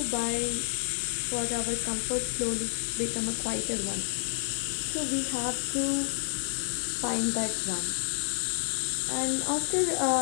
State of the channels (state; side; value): silent; right; digital silence